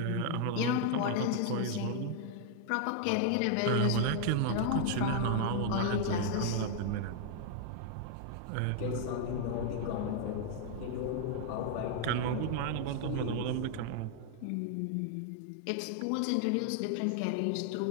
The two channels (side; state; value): both; different; correlation 0.00